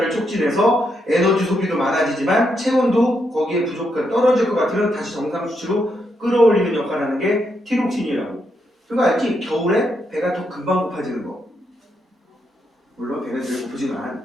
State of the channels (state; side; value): normal; both; correlation 0.80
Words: 촉진해서 에너지 소비도 많아지지만 체온도 거기에 부족한 떨어질 것 같으면 다시 정상 수치로 끌어올리는 역할을 하는 게 티록신이라고. 그거 알지? 겨울에 배가 더 금방 고파지는 거. 물론 배는 늘